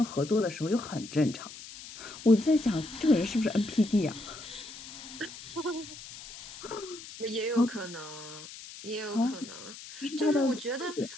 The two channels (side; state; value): left; noise; hiss, 14 dB below the sound